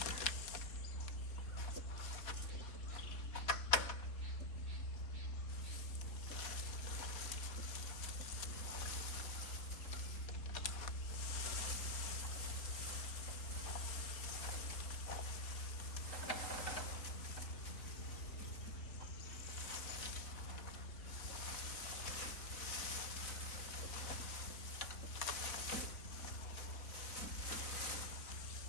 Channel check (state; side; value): late; right; 4.1 ms